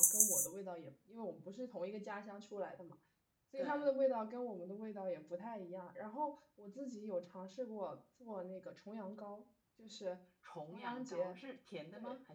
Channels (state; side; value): identical; both; correlation 1.00